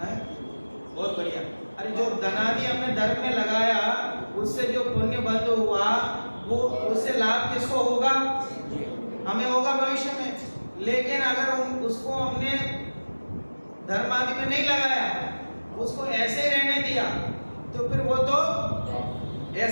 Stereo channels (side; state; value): both; inverted; correlation -1.00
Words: बहुत बढ़िया। अरे जो धनादि हमने धर्म में लगाया उससे जो पुण्य बंद हुआ वो उससे लाभ किसको होगा? हमें होगा भविष्य में। लेकिन अगर उसको हमने धर्म आदि में नहीं लगाया, उसको ऐसे रहने दिया, तो फिर वो तो